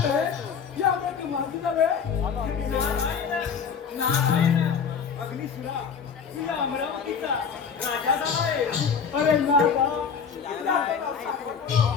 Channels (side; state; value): right; quieter; 6.5 dB